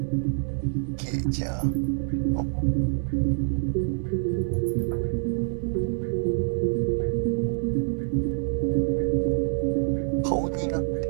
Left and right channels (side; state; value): left; silent; 61 dB below the other